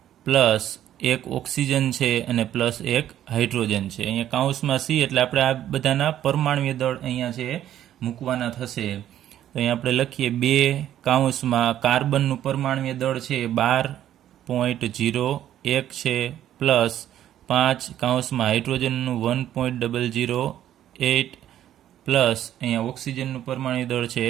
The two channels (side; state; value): left; quieter; 11.6 dB